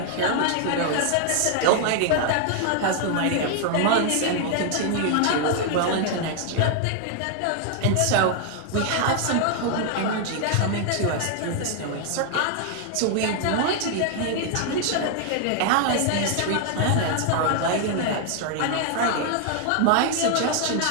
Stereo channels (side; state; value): both; different; correlation 0.00